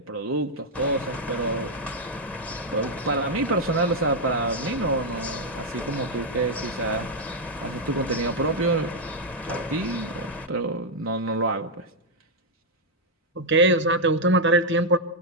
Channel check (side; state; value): both; normal; correlation -0.01